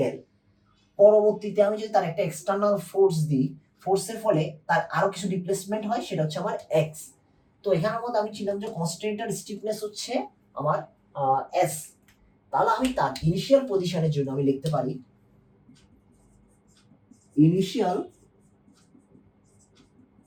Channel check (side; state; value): both; identical; correlation 1.00